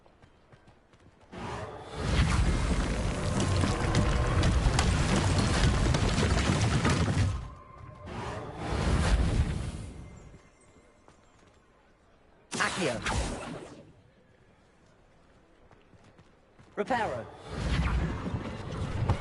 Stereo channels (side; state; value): both; identical; correlation 1.00